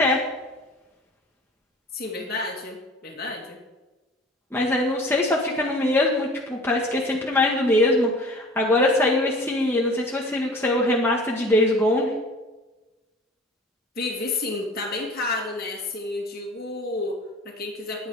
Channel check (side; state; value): both; normal; correlation 0.43